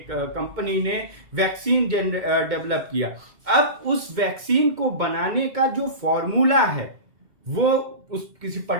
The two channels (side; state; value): left; late; 2.2 ms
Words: कंपनी ने वैक्सीन डेवलप किया। अब उस वैक्सीन को बनाने का जो फॉर्मूला है वो उस किसी